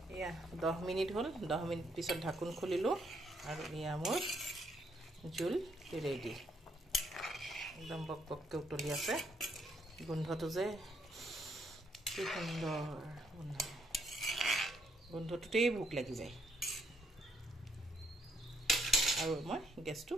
এয়া 10 মিনিট হ'ল 10 মিনিট পিছত ঢাকন খুলিলো আৰু এয়া মোৰ জোল ৰেডি একদম বকবককৈ উতলি আছে গোন্ধটো যে কি সুন্দৰ গোন্ধটোতেই ভোক লাগি যায় আৰু মই গেছটো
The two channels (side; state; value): both; normal; correlation 0.72